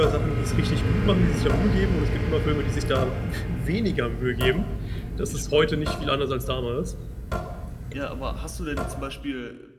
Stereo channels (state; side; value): identical; both; correlation 1.00